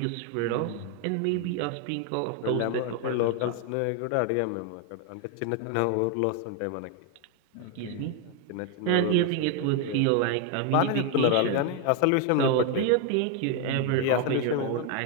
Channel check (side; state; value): both; different; correlation 0.01